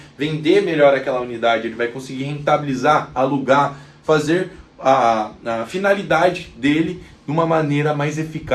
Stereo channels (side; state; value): both; identical; correlation 1.00